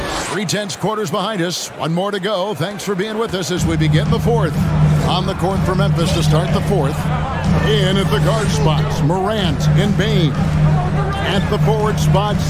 3/10 quarters behind us. 1 more to go. Thanks for being with us as we begin the 4th. On the court for Memphis to start the 4th. In at the guard spots, Morant and Bain. At the forward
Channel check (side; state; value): both; identical; correlation 1.00